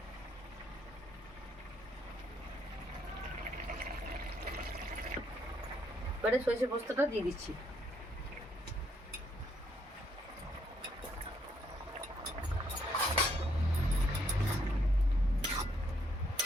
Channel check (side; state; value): both; normal; correlation 0.71